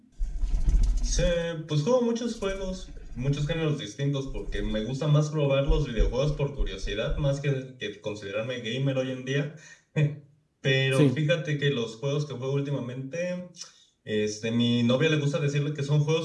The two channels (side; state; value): both; identical; correlation 1.00